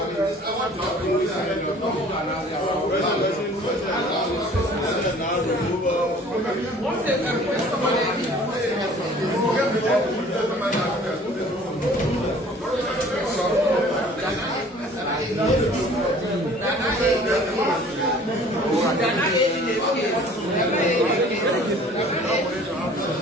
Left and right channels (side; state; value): both; normal; correlation 0.50